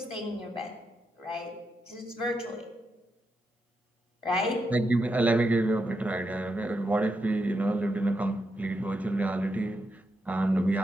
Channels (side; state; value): both; normal; correlation 0.84